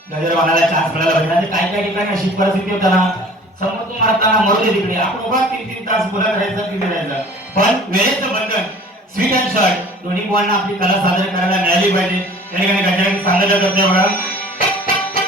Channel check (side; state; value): both; normal; correlation 0.47